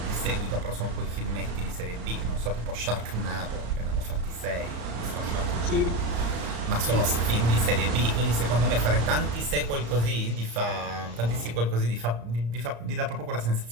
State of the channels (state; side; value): late; left; 34 ms